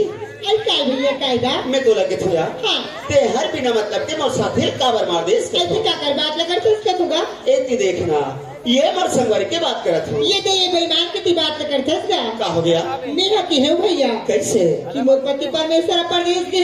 आई काय भैया कायगा मैं तो लगे थोड़ा हाँ ते हर बिना मतलब के मोर साथे काबर मार दे इसके ऐसे क्या कर बात लगा तो इसका होगा एती देखना ये मोर संगवारी के बात करत हूं ये तो ये बेईमान की बात करते इसका का हो गया मेरा की है भैया कैसे कि मोर पति परमेश्वर परदेश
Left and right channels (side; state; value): both; identical; correlation 1.00